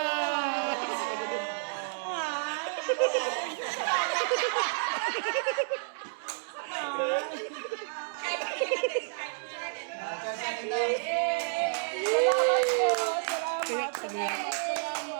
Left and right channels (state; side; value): silent; left; 58 dB below the other